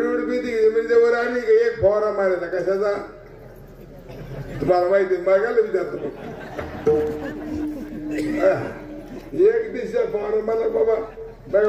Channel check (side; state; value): both; identical; correlation 1.00